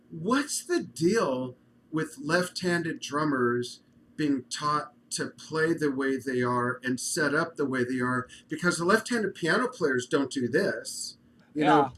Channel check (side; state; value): both; identical; correlation 1.00